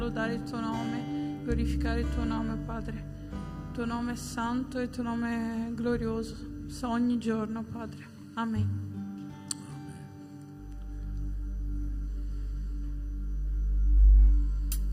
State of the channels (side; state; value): both; identical; correlation 1.00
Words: il Tuo nome, glorificare il Tuo nome, Padre. Il Tuo nome è santo e il Tuo nome è glorioso, ogni giorno, Padre. Amen.